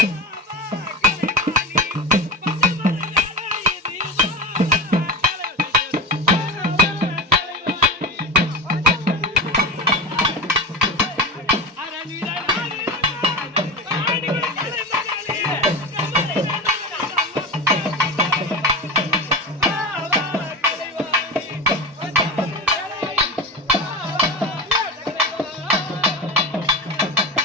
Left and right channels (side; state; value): both; normal; correlation 0.26